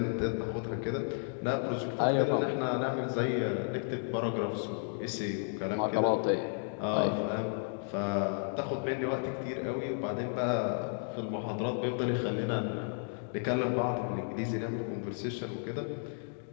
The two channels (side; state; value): right; silent; 56 dB below the other